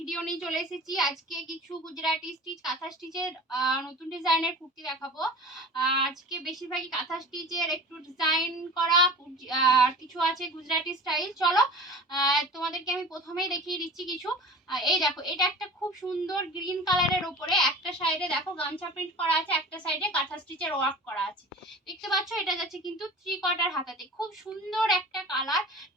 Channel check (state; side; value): normal; both; correlation 0.39